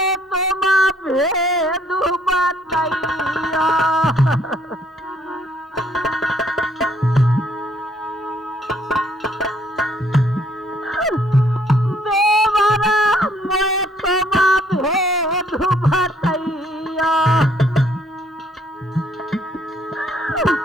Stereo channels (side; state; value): both; normal; correlation 0.65